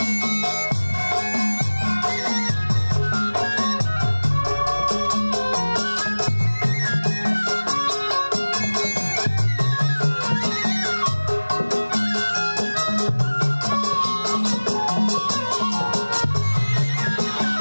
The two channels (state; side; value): inverted; both; correlation -1.00